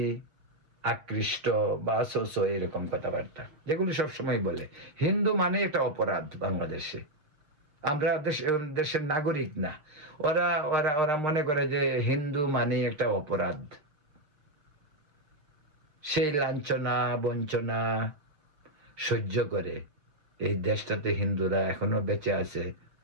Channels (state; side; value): late; left; 6.6 ms